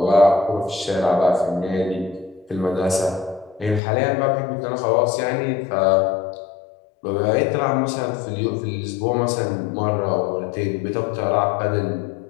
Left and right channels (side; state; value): right; drops out; at 3.8 s